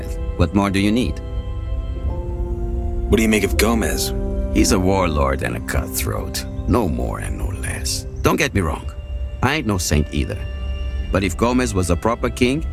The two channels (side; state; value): both; identical; correlation 1.00